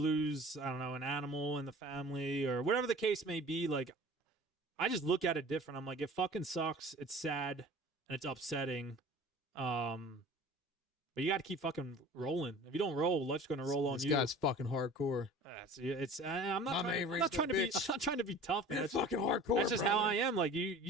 I don't know, an animal in the family or whatever the case may be, like I just look at it different. I'm like, it fucking sucks. It's sad and it's upsetting. But you got to keep fucking rolling. If you don't roll, life's going to roll on you. This guy's fucking hardcore. I'm not trying to be tough, man. It's fucking hardcore. That's just how I am. Like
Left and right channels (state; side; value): normal; both; correlation 0.43